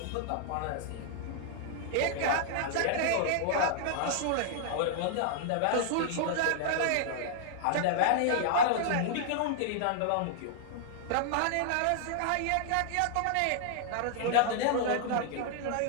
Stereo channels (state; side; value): different; both; correlation -0.01